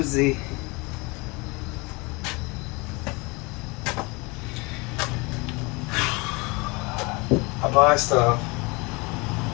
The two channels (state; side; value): quieter; right; 26.8 dB